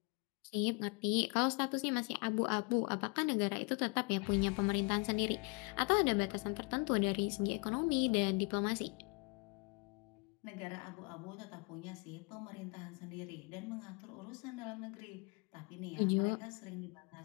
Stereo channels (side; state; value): right; quieter; 31.5 dB